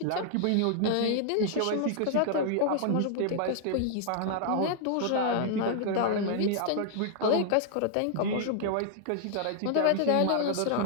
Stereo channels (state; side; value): different; both; correlation -0.01